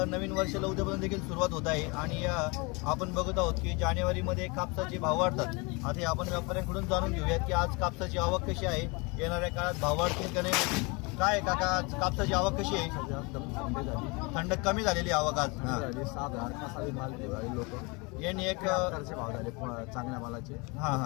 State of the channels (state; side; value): quieter; right; 28.4 dB